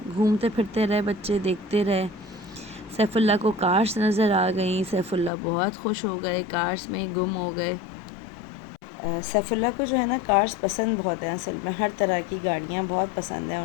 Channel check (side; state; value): right; drops out; at 5.3 s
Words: گھومتے پھرتے رہے بچے، دیکھتے رہے۔ سیف اللہ کو کارس نظر آ گئیں، سیف اللہ بہت خوش ہو گئے، کارس میں ہی گم ہو گئے۔ سیف اللہ کو جو ہے نا کارس پسند بہت ہیں، اصل میں ہر طرح کی گاڑیاں بہت پسند ہیں